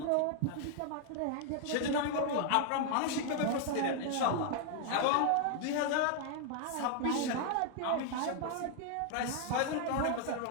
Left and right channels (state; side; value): different; both; correlation 0.00